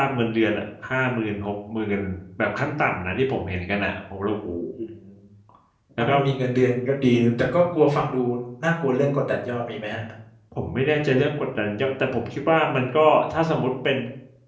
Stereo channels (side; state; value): both; identical; correlation 1.00